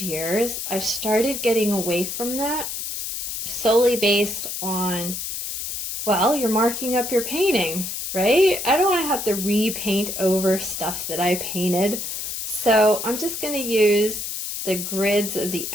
years, I've started getting away from that solely based on, well, you're marking up your painting, right? I don't want to have to repaint over stuff that I painted. So I'm just going to use the grids of the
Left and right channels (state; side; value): noise; left; hiss, 5 dB below the sound